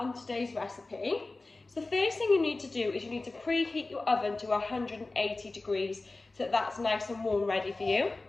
today's recipe. So the first thing you need to do is you need to preheat your oven to 180 degrees so that that's nice and warm ready for you.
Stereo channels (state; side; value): quieter; right; 3.3 dB